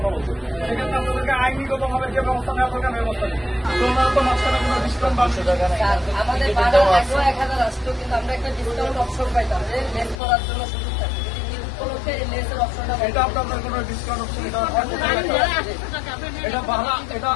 বলছি। সেক্ষেত্রে আপনাদেরকে আইনিগত ভাবে যে ব্যবস্থা নেওয়া দরকার ব্যবস্থা নেই। তো ওনারা তো মাঝখানে কোনো ডিসকাউন্ট পাচ্ছে। আমাদের ভাড়া 1000 আসতো, কিন্তু আমরা একটা ডিসকাউন্ট অপশন পাইতাম যে লেস করার জন্য সুযোগ থাকে। উপলক্ষে লেসের অপশনটা এটা আপনাদের কোনো ডিসকাউন্ট অপশন এটা ভাড়া, এটা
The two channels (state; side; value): drops out; right; at 10.2 s